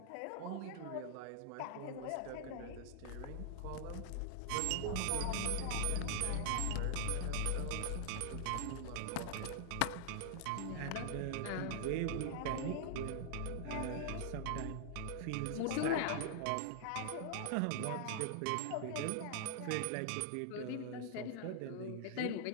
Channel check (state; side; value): different; both; correlation -0.01